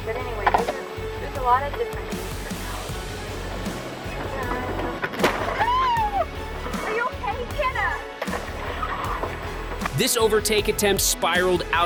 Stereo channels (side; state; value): both; identical; correlation 1.00